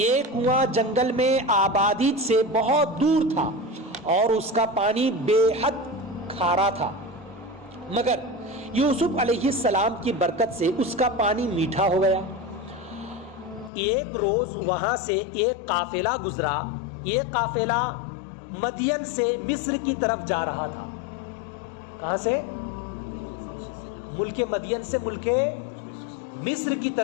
کنواں جنگل میں آبادی سے بہت دور تھا اور اس کا پانی بے حد کھارا تھا، مگر یوسف علیہ السلام کی برکت سے اس کا پانی میٹھا ہو گیا۔ ایک روز وہاں سے ایک قافلہ گزرا۔ یہ قافلہ مدین سے مصر کی طرف جا رہا تھا۔ کہاں سے؟ ملک مدین سے ملک مصر کی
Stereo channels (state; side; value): drops out; right; at 13.7 s